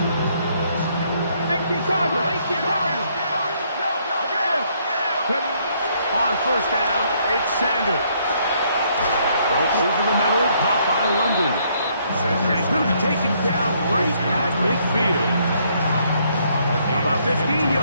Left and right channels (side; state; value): both; inverted; correlation -0.69